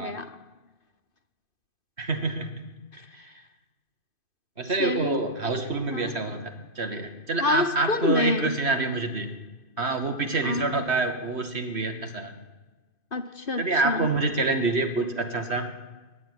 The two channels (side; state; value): right; late; 2.5 ms